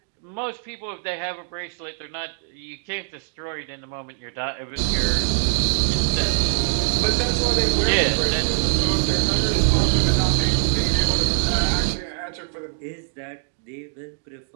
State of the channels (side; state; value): left; silent; digital silence